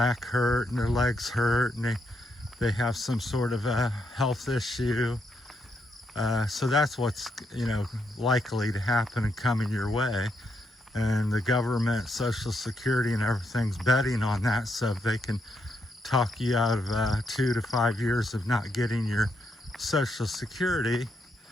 hurt and their legs hurt and they have some sort of a health issue. So that's what's, likely to happen and coming your way. And the government, Social Security and everything's betting on that so they can talk you out of 2 to 5 years of not getting your Social Security.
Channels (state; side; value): normal; both; correlation 0.78